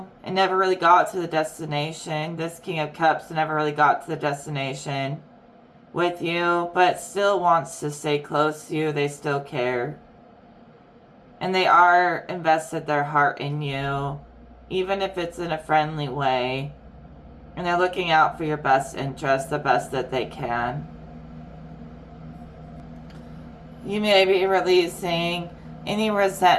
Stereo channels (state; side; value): identical; both; correlation 1.00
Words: it never really got to the destination. This King of Cups never really got to the destination with you, but still wants to stay close to you. They still care. And they are invested their heart in you, even if it's in a friendly way. And they're looking out for your best interest, the best that they can. You may be releasing any